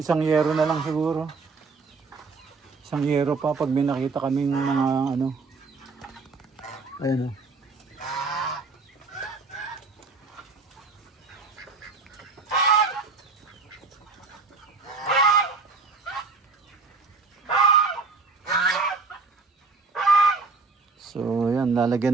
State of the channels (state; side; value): quieter; left; 4.3 dB